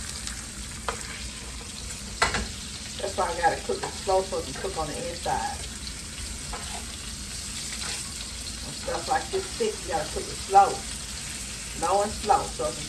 That's why I gotta cook it slow so it can cook on the inside. When stuff like this thick, you gotta cook it slow. Low and slow so it can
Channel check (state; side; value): identical; both; correlation 1.00